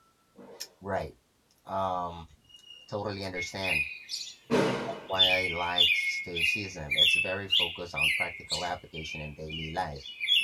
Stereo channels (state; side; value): identical; both; correlation 1.00